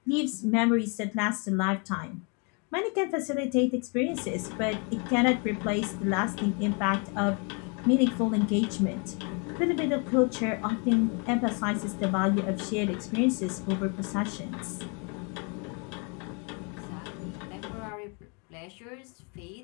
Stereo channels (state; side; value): quieter; right; 35.0 dB